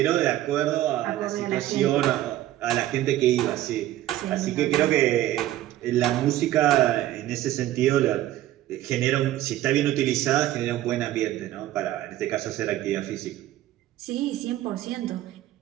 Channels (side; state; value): left; quieter; 14.1 dB